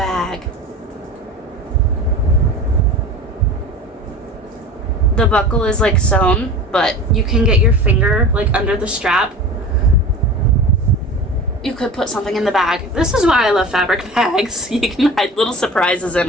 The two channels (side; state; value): both; normal; correlation 0.35